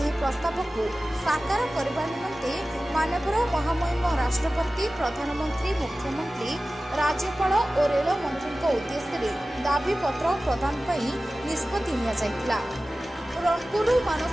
प्रस्ताव को साकार करने निमंते माननीय महामहिम राष्ट्रपति, प्रधानमंत्री, मुख्यमंत्री, राज्यपाल और रेल मंत्री उद्देश्य दाबी पत्र प्रदान निष्पत्ति निया जायतिला। रणपुर मानस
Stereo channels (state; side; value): normal; both; correlation 0.96